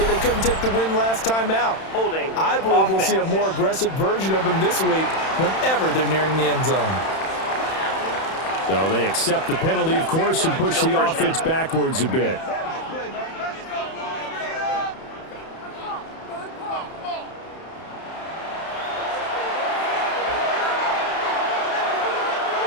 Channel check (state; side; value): late; right; 31 ms